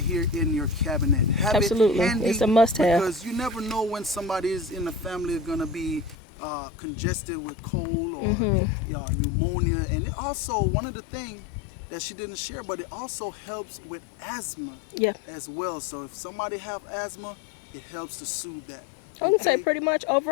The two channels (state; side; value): drops out; right; at 6.2 s